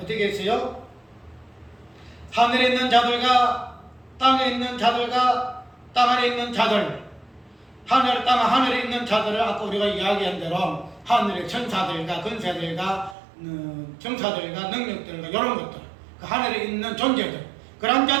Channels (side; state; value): left; drops out; at 13.2 s